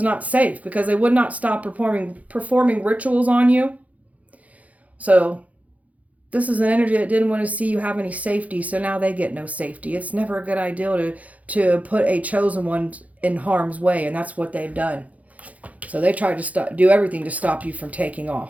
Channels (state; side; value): late; left; 0.070 ms